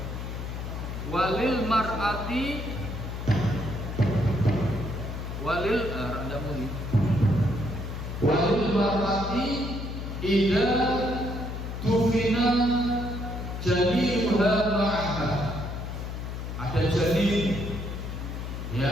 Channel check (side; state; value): left; noise; hum, 6 dB below the sound